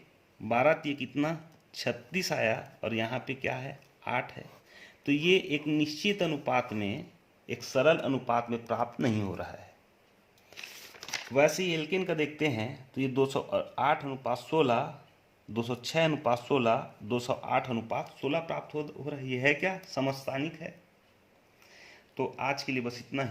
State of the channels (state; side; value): identical; both; correlation 1.00